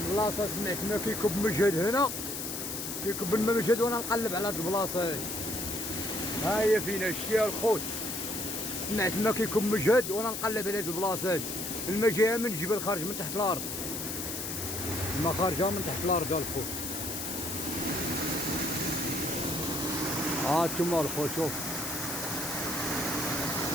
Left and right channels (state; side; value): noise; left; hiss, 5 dB below the sound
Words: البلاصه سمعت ما كيكب مجهد هنا، كيكب الماء مجهد وانا نقلب على هاد البلاصه هادي. ها هي فينا شتيها الخوت، سمعت ما كيكب مجهد وانا نقلب على هاد البلاصه هادي. الماء جايه من الجبل خارج من تحت الارض، الماء خارجه من تحت الارض الخوت. ها انتما الخوت